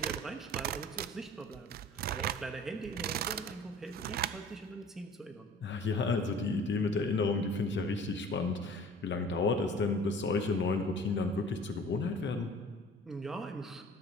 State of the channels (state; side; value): normal; both; correlation 0.46